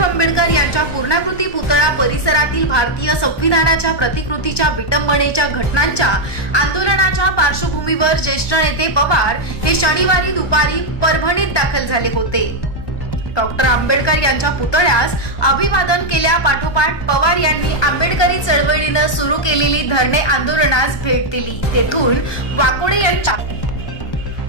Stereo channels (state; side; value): late; right; 1.2 ms